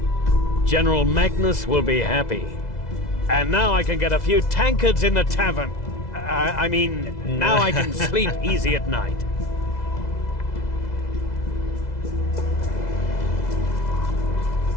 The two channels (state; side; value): late; right; 2.0 ms